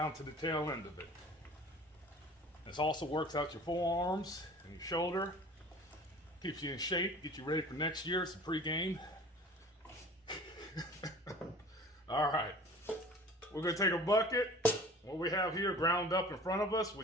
to the tail end of it. This also works out your forearms and your shoulder. Keeps you in shape, get you ready for next year. It's a pre-game. All right, we're gonna take a bucket. What we have here ground up in front of us,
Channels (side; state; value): both; normal; correlation 0.44